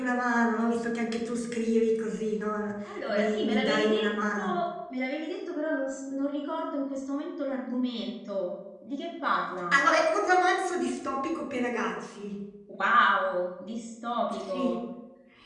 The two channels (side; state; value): both; identical; correlation 1.00